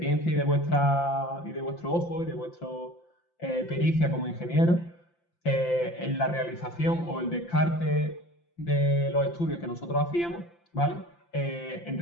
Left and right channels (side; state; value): right; late; 5.8 ms